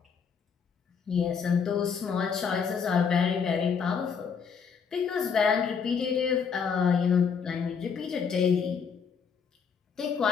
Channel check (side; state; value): right; quieter; 6.3 dB